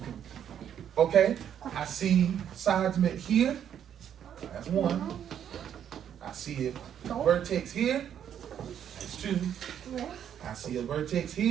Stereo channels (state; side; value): quieter; left; 9.3 dB